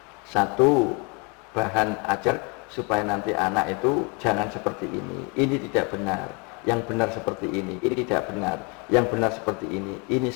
satu bahan ajar supaya nanti anak itu jangan seperti ini tidak benar, yang benar seperti ini tidak benar, yang benar seperti ini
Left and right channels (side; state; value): right; quieter; 32.0 dB